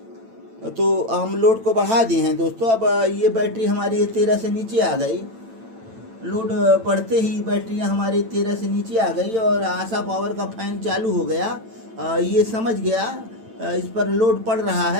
तो हम लोड को बढ़ा दिए हैं दोस्तों। अब ये बैटरी हमारी 13 से नीचे आ गई। लोड बढ़ते ही बैटरियां हमारी 13 से नीचे आ गई और आशा पावर का फैन चालू हो गया। ये समझ गया इस पर लोड पड़ रहा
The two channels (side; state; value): left; late; 8.9 ms